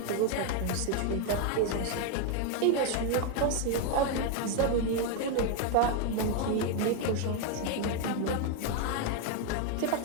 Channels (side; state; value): both; different; correlation 0.01